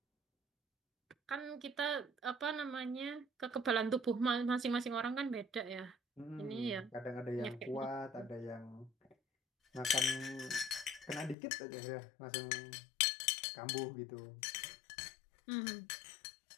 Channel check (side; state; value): right; drops out; at 11.4 s